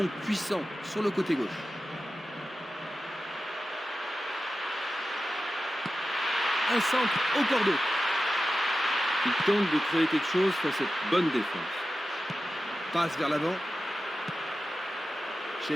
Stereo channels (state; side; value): normal; both; correlation 0.93